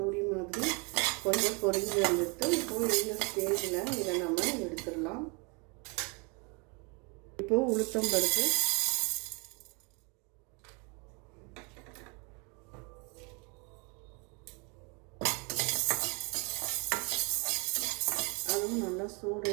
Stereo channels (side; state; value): left; quieter; 31.6 dB